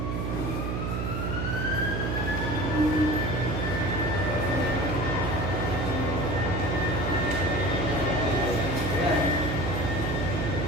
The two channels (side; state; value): right; noise; hum, 1 dB below the sound